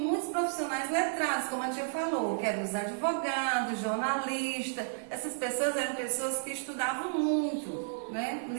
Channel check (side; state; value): left; silent; digital silence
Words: profissionais letrados, como a tia falou, que eram os advogados, jornalistas. Essas pessoas eram pessoas que estudavam muito, né?